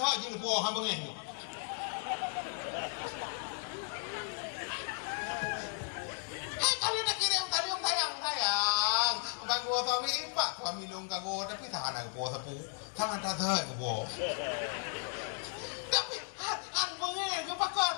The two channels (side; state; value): right; silent; 54 dB below the other